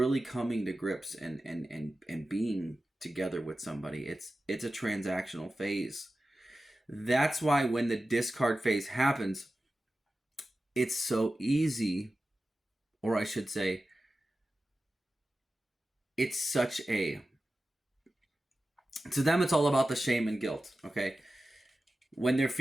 coming to grips and being together with somebody. It's a transactional phase. That's why when the discard phase happens, it's so easy or I should say, it's such a, to them, it's all about the shame and guilt, okay? When they're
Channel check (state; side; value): normal; both; correlation 0.94